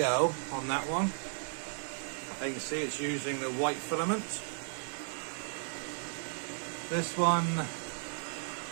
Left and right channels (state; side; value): silent; left; 55 dB below the other